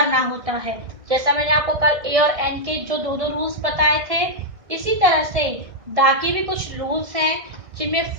होता है। जैसा मैंने आपको कल ए और एन के जो दो दो रूल्स बताए थे, इसी तरह से द के भी कुछ रूल्स हैं, जिनमें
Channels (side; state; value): left; late; 1.6 ms